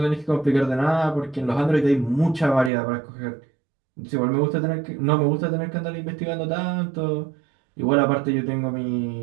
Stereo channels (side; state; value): left; drops out; at 2.7 s